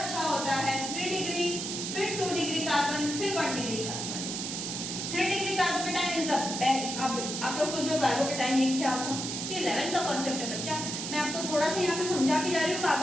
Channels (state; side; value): noise; right; hiss, 4 dB below the sound